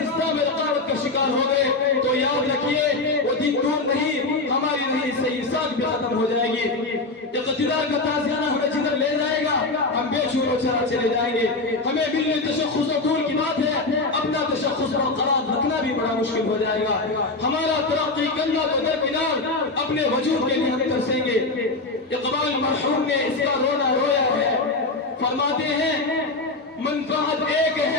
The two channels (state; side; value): quieter; right; 3.3 dB